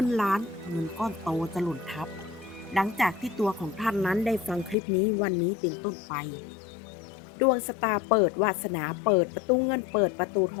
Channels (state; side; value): drops out; right; at 4.8 s